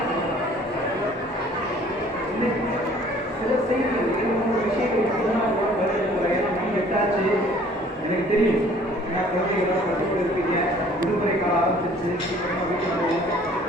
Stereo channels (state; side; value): normal; both; correlation 0.54